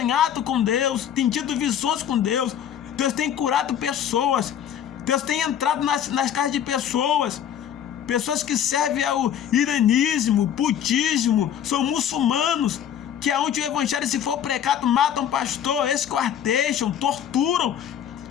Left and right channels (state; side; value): quieter; right; 9.5 dB